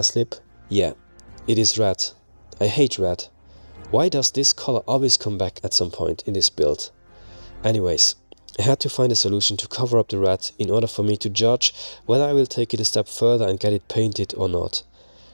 lip? Yeah, it is red. I hate red. Why does this color always come back at some point in this build? Anyways, I had to find a solution to cover up the red in order for me to judge whether I will take it a step further and get it painted or not.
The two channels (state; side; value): inverted; both; correlation -1.00